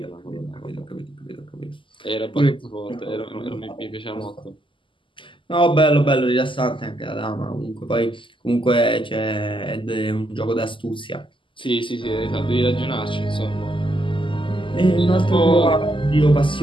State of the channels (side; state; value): right; late; 0.25 ms